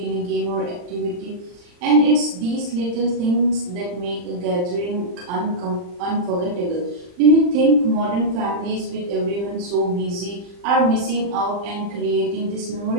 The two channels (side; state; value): left; late; 40 ms